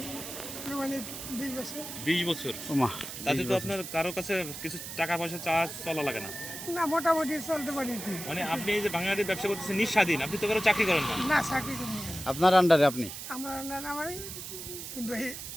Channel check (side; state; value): right; noise; hiss, 9 dB below the sound